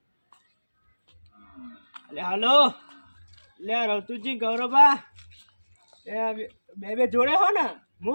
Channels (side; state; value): both; inverted; correlation -1.00